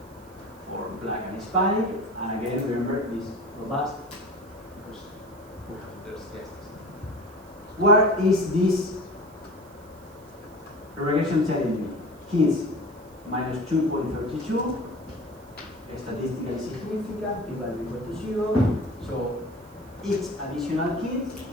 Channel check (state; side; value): noise; right; hiss, 27 dB below the sound